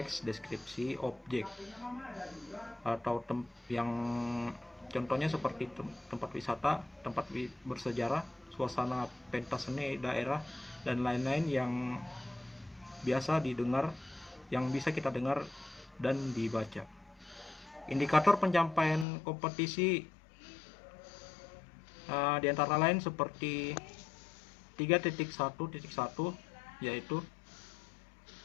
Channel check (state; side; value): drops out; right; at 19.1 s